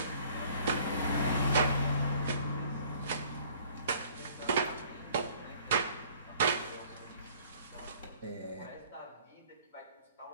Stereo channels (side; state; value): both; inverted; correlation -0.56